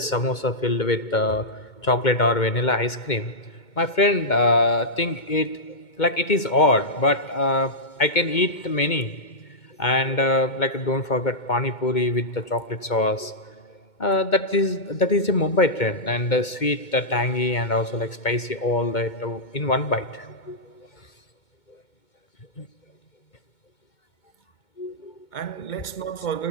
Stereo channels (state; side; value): late; right; 2.2 ms